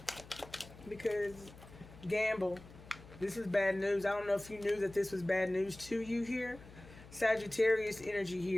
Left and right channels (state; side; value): noise; left; hum, 19 dB below the sound